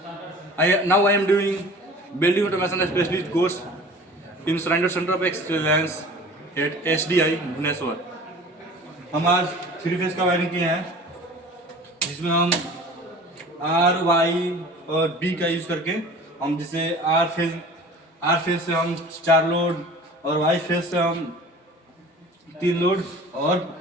Now I am doing Building Automation Specialist course in Surrender Center of Excellence at SDI Bhubaneswar. हम आज 3 phase का wiring किए हैं, जिसमें हम R Y और B का use करके हम जिसे आर फेज से हम 4 लोड और वाई फेज से हम 3 लोड और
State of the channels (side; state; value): both; normal; correlation 0.43